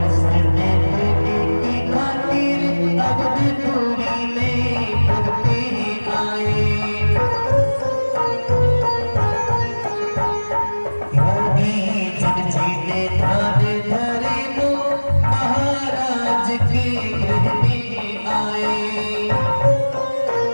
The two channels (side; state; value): both; inverted; correlation -1.00